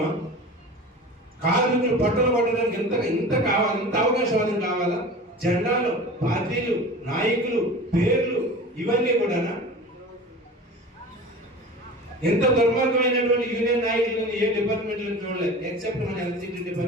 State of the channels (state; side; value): normal; both; correlation 0.36